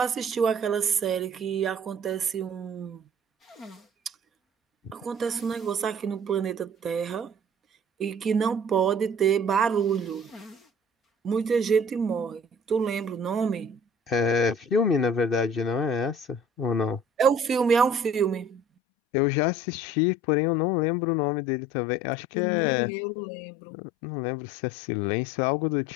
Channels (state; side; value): drops out; right; at 18.6 s